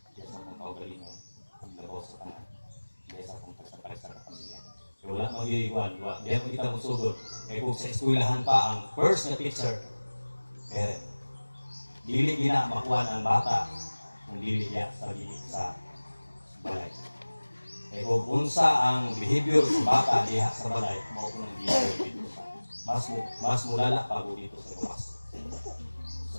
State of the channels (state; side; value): inverted; both; correlation -1.00